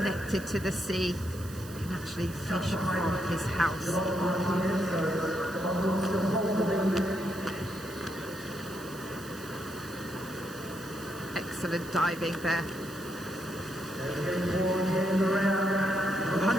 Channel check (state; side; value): noise; right; hiss, 17 dB below the sound